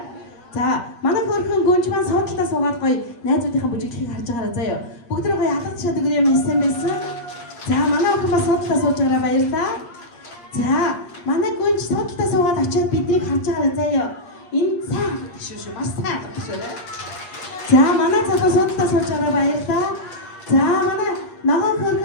За манай хөрхөн гүнж маань суудлаа суугаад гоё найзуудынхаа бүжиглэхийг харж байгаарай заяа. Бүгдөө гоё алгад шат өгөр юм хэлсэн байсан. За манай охин бас суудлаа сууж байгаарай баярлалаа. За манай гүнж суудлаа суугаад очиод биднийг харж байгаарай заяа. Энэ сайн шүү маш сайн шүү. За манай цагаа суудлаа сууж байгаарай баярлалаа. За манай ногоон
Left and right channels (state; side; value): late; right; 8.5 ms